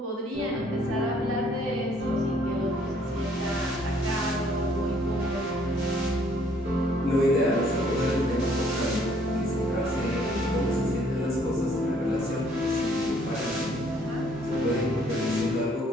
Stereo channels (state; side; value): normal; both; correlation 0.63